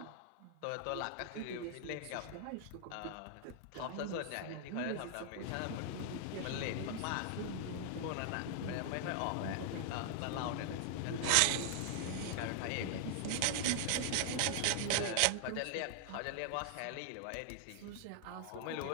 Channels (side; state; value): both; different; correlation 0.00